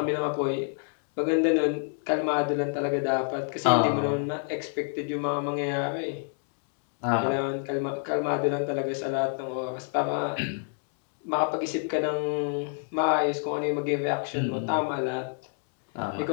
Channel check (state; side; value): silent; right; 57 dB below the other